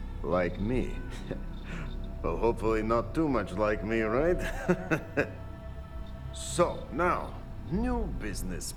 Like me. Well, hopefully not too much like me, right? So, now, new business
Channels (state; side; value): identical; both; correlation 1.00